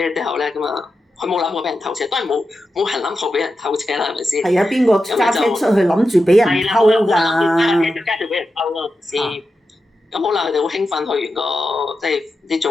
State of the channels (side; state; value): both; normal; correlation 0.90